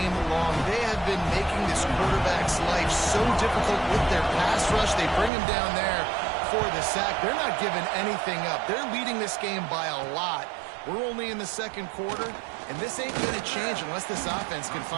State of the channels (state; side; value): drops out; left; at 5.3 s